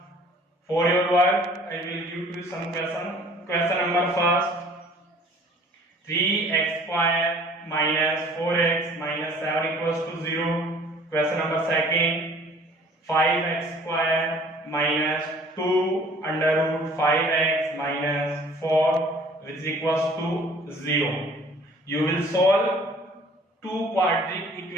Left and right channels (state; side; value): normal; both; correlation 0.52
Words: for your work, I will give you some question. Question number first: 3x square minus 4x minus 7 equals to 0. Question number second: 5x square minus 2 under root 5x minus 4 which is equals to 0. You will solve two quadratic